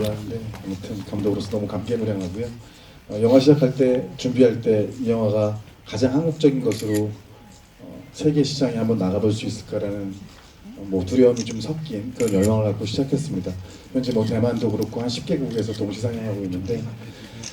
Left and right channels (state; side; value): identical; both; correlation 1.00